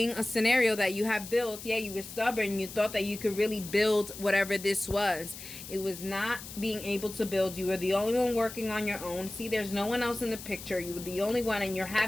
a scenario that you have built. Yeah, you were stubborn. You thought that you could really build whatever this was. It was not being able to build. You were the only one working on your own. See, there's no one else in the picture. You were the only one, and you're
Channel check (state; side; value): noise; left; hiss, 12 dB below the sound